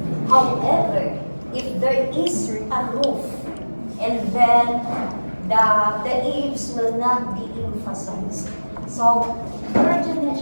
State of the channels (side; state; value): both; inverted; correlation -1.00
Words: However, if there is a roof and then the eaves will not be emphasized. So, imagine na